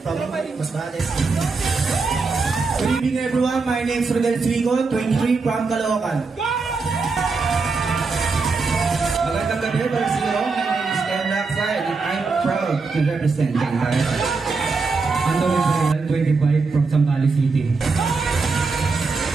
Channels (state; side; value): quieter; left; 4.3 dB